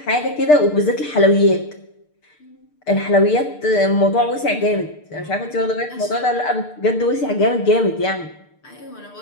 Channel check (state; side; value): late; right; 6.7 ms